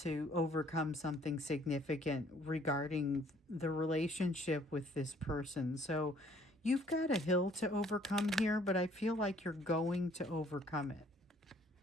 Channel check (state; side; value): normal; both; correlation 0.60